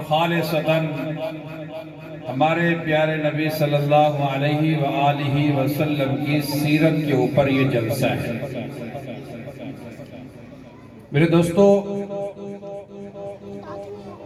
خالصتاً ہمارے پیارے نبی صلی اللہ علیہ وآلہ وسلم کی سیرت کے اوپر یہ جلسہ ہے۔ میرے دوستو،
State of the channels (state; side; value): identical; both; correlation 1.00